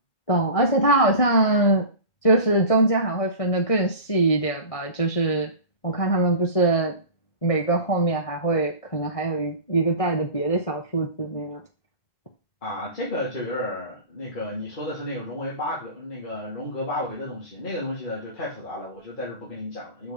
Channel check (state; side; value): late; right; 1.6 ms